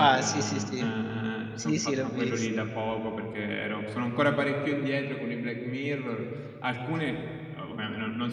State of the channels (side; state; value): both; identical; correlation 1.00